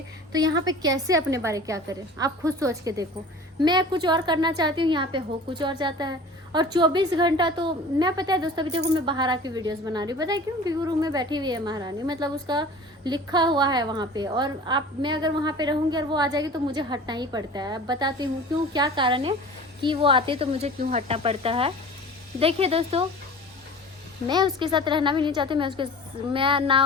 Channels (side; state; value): both; normal; correlation 0.41